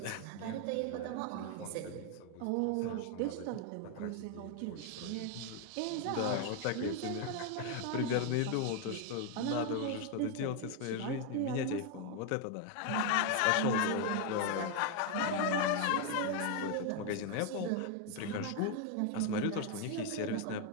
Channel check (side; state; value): both; different; correlation 0.01